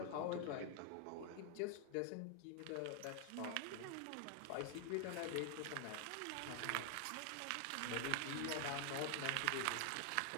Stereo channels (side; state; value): both; different; correlation 0.00